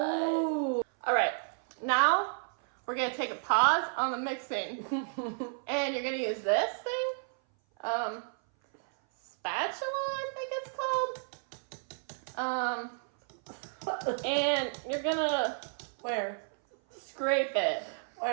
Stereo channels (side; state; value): left; silent; 56 dB below the other